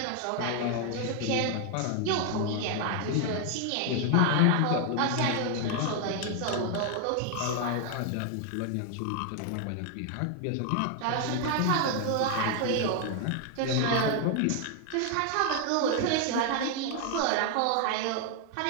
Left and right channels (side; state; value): both; different; correlation 0.01